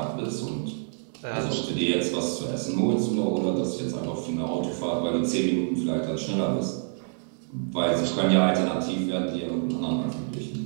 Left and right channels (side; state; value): left; silent; digital silence